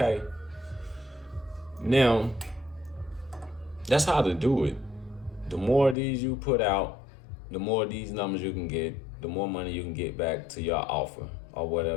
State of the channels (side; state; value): right; drops out; at 6.0 s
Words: Now, that's how to do it. The more of these you put out, the more of these numbers you can get, the more money you can get back to your offer or